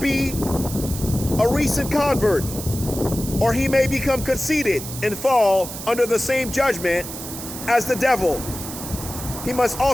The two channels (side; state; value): right; noise; hiss, 10 dB below the sound